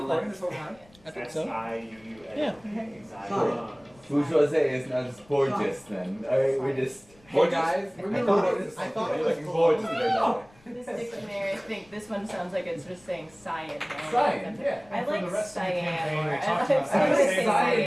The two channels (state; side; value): noise; left; rumble, 29 dB below the sound